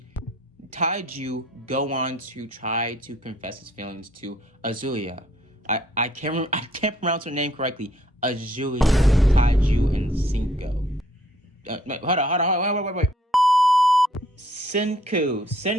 Taiju go on to try to confess his feelings to Azuya. I can't pronounce her name correctly. Azuya, Taiju, and Senku. Hold on, wait. Senku,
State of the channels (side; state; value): both; normal; correlation 0.63